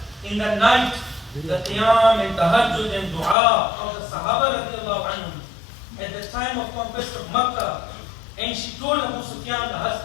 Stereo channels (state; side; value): drops out; right; at 3.4 s